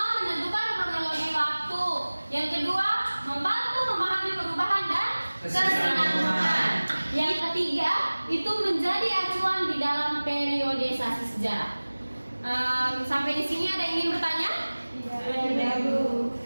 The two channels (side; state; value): both; inverted; correlation -1.00